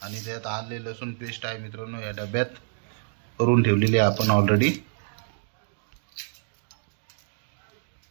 आणि त्यात आले लसूण पेस्ट आहे मित्रांनो, या डब्यात करून ठेवलेली आहे आपण ऑलरेडी।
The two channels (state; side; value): silent; left; digital silence